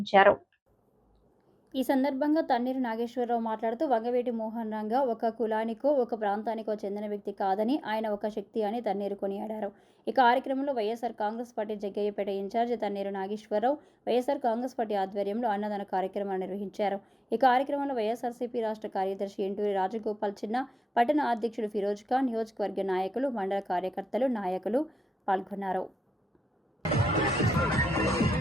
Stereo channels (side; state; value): both; normal; correlation 0.93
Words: ఈ సందర్భంగా తన్నీరు నాగేశ్వరరావు మాట్లాడుతూ వంగవీటి మోహన్ రంగ ఒక కులానికో ఒక ప్రాంతానికో చెందిన వ్యక్తి కాదని ఆయన ఒక శక్తి అని తన్నీరు కొనియాడారు. ఈ కార్యక్రమంలో YSR Congress party Jaggayyapeta incharge Tanneeru Nageswararao YSR Congress party ఆధ్వర్యంలో అన్నదాన కార్యక్రమాన్ని నిర్వహించారు. ఈ కార్యక్రమంలో వైఎస్ఆర్సీపీ రాష్ట్ర కార్యదర్శి ఎంటూరి రాజగోపాల్ చిన్న, పట్టణ అధ్యక్షుడు ఫిరోజ్ ఖాన్, నియోజకవర్గ నాయకులు, మండల కార్యకర్తలు, నాయకులు పాల్గొన్నారు.